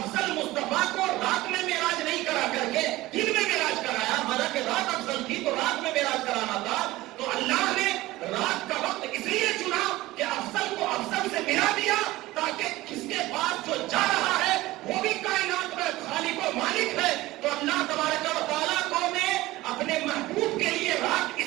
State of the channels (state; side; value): quieter; left; 18.1 dB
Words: مصطفیٰ کو رات میں معراج نہیں کرا کر کے دن میں معراج کرایا، حالانکہ رات افضل تھی تو رات میں معراج کرانا تھا. تو اللہ نے رات کا وقت اس لیے چنا کہ افضل کو افضل سے ملا دیا تاکہ کس کے پاس جو جا رہا ہے وہ بھی کائنات میں خالق و مالک ہے. تو اللہ تبارک و تعالیٰ کو نے اپنے محبوب کے لیے رات